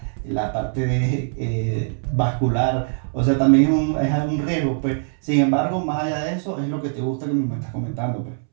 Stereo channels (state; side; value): silent; left; 63 dB below the other